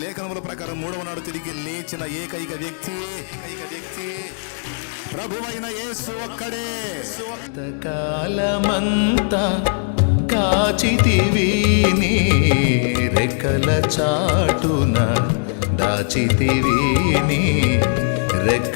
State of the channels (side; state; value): right; silent; digital silence